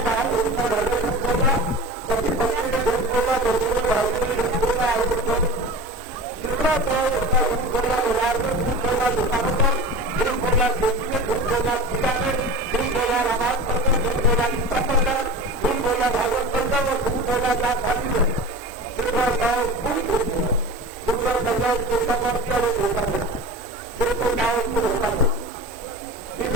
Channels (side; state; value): both; normal; correlation 0.32